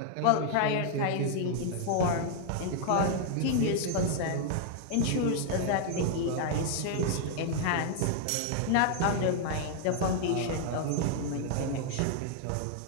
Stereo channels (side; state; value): both; different; correlation 0.00